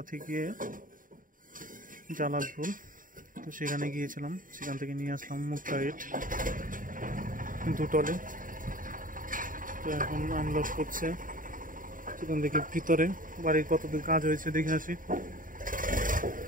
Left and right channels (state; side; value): late; left; 0.39 ms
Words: থেকে জালালপুর, তো সেখানে গিয়েছিলাম, সেখান থেকে নিয়ে আসলাম মুক্তা ইট দুটলে। তো এখন আনলোড করছে। সেখান থেকে ভিতরে বাড়ির কতদূর কাজ হয়েছে দেখে আসি।